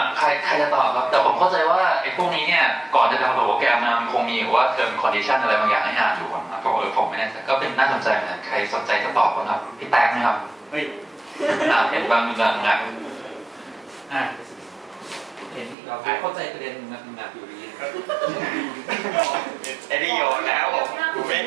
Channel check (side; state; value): left; drops out; at 15.8 s